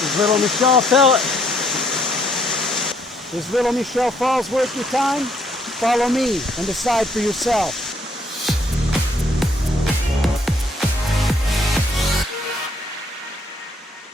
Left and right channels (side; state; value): both; normal; correlation 0.68